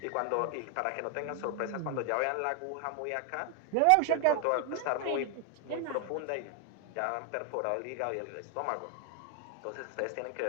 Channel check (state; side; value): different; both; correlation 0.00